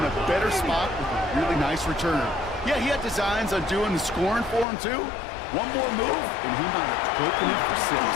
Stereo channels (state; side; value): drops out; right; at 4.7 s